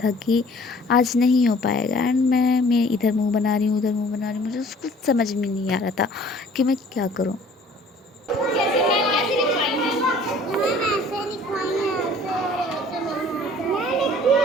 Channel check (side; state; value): both; normal; correlation 0.52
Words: कि आज नहीं हो पाएगा। एंड मैं इधर मुंह बना रही हूँ उधर मुंह बना रही हूँ, मुझे उसको समझ में नहीं आ रहा था कि मैं क्या करूँ। कैसे मैं कैसे लिखवाई है? मैम ऐसे लिखवाई है, ऐसे लिखी